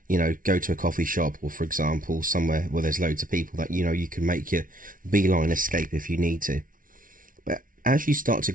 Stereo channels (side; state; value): left; late; 0.39 ms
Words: go to a coffee shop, or for example somewhere where there's loads of people that you can make your beeline escape if you need to. But as you start to